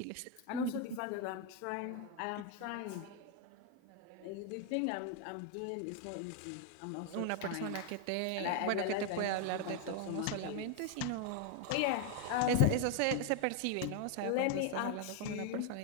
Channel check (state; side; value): different; both; correlation 0.01